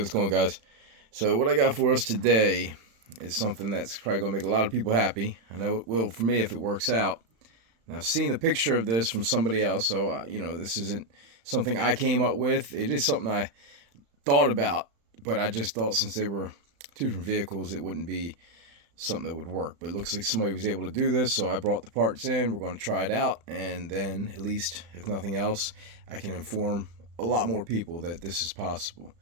going on, guys? So what I got for us today is something that's probably going to make a lot of people happy. I know it will for me if it works out. Now, I've seen a picture of this from somebody else, so this isn't something I came up with. It is something I thought about, but I just thought since they were two different vehicles, it wouldn't be something that would work. But it looks like somebody was able to do this, so I brought the parts in. We're going to try it out, and then at least, if nothing else, I can inform a lot more people that this is possible.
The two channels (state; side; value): late; left; 35 ms